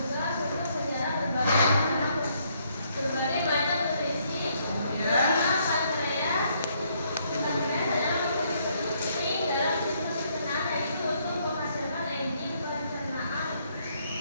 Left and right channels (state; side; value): inverted; both; correlation -0.70